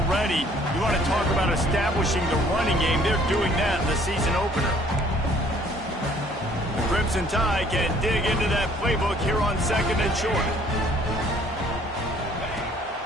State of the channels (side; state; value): both; normal; correlation 0.59